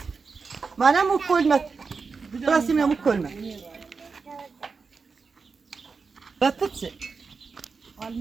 ما انا مو كلمة براسي مو كلمة بتتسي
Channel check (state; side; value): quieter; left; 4.8 dB